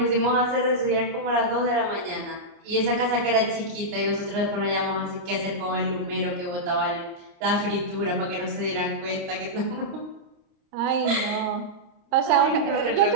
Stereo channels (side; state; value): left; late; 29 ms